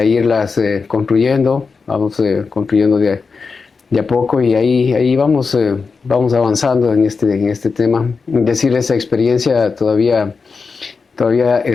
irlas construyendo. Vamos construyendo de a poco, y ahí vamos avanzando en este tema. Es decir, esa experiencia todavía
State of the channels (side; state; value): right; quieter; 4.8 dB